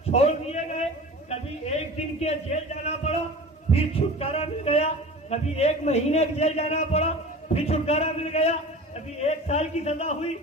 چھوڑ دیے گئے کبھی 1 دن کے جیل جانا پڑا پھر چھٹکارا مل گیا کبھی 1 مہینے کے جیل جانا پڑا پھر چھٹکارا مل گیا کبھی 1 سال کی سزا ہوئی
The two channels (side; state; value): both; normal; correlation 0.37